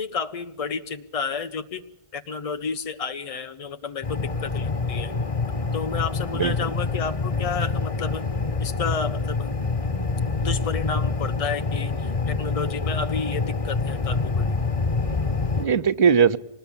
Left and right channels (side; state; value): right; late; 1.6 ms